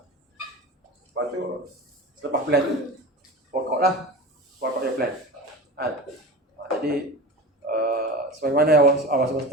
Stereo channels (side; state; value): both; normal; correlation 0.31